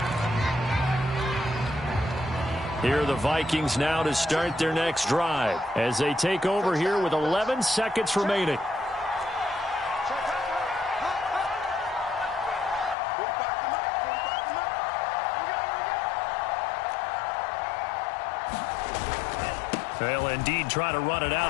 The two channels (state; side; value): drops out; right; at 13.0 s